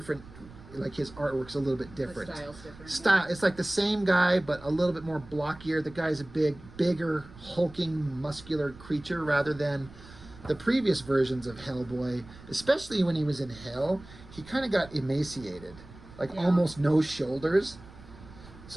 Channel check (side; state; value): right; noise; rumble, 19 dB below the sound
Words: like his artwork's a little bit different. The style's different. Style, it's like the same guy, but a little bit more blockier. The guy's a bigger, hulking, muscular creature rather than the previous versions of HellBoy, especially when he was in hell. He kind of got emaciated, like almost no shoulders.